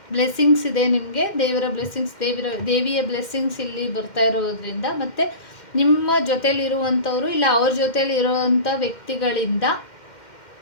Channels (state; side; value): late; right; 2.1 ms